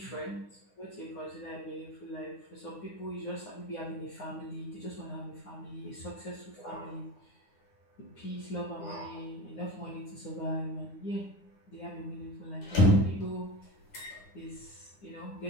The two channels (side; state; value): right; late; 9.8 ms